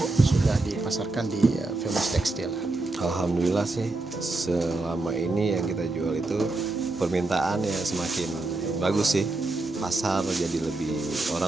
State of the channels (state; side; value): quieter; left; 3.1 dB